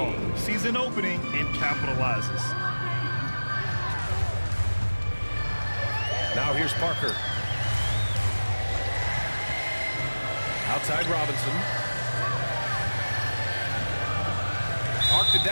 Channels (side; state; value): both; inverted; correlation -1.00